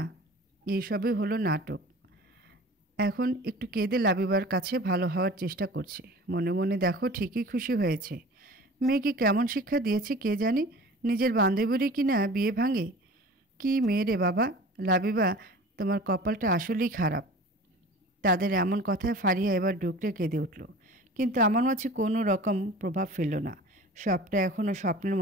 এইসবই হলো নাটক। এখন একটু কেঁদে লাবিবার কাছে ভালো হওয়ার চেষ্টা করছে। মনে মনে দেখো ঠিকই খুশি হয়েছে। মেয়েকে কেমন শিক্ষা দিয়েছে কে জানে, নিজের বান্ধবীরই কি না বিয়ে ভাঙে। কি মেয়ে রে বাবা! লাবিবা, তোমার কপালটা আসলেই খারাপ। তাদের এমন কথায় ফারিয়া এবার ডুকরে কেঁদে উঠল, কিন্তু আমার মাঝে কোনো রকম প্রভাব ফেলল না। সবটা এখনও স্বপ্নের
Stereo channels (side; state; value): both; normal; correlation 0.41